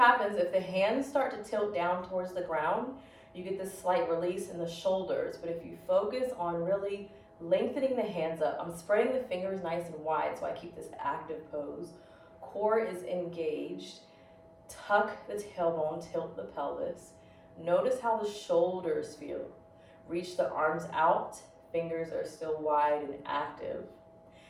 if the hands start to tilt down towards the ground. You get this slight release in the shoulders. But if you focus on really lengthening the hands up, I'm spreading the fingers nice and wide so I keep this active pose. Core is engaged. Tuck the tailbone, tilt the pelvis. Notice how the shoulders feel. Reach the arms out. Fingers are still wide and active.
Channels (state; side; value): identical; both; correlation 1.00